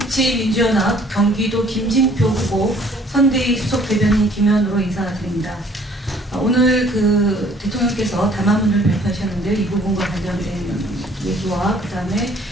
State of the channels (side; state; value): both; normal; correlation 0.57